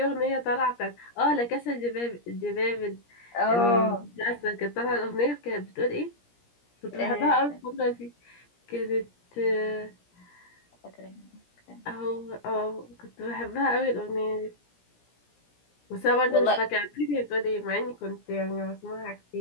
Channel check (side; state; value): right; late; 17 ms